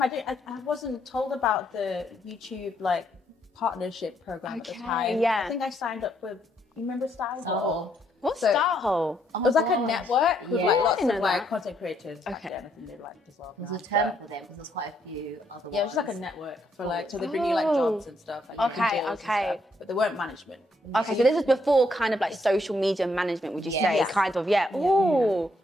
I wasn't told about the YouTube like partnership program at the time. Yeah. I think I signed up with, you remember Style Hall? What's Start Hole? It was like a network with like lots of know like that. content creators back then. I think they like as well. There's a term for them because there's quite a few other ones. Yeah, it was like a network for like, so they bring you like jobs and stuff. Like, deals and stuff, but they weren't management. Okay, so this was before kind of like social media management, would you say? Kind of, Ooh.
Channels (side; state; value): both; normal; correlation 0.73